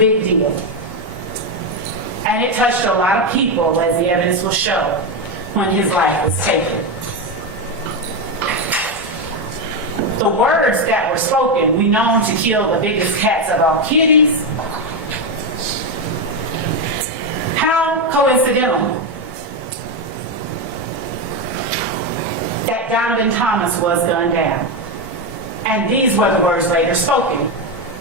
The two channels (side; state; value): both; normal; correlation 0.09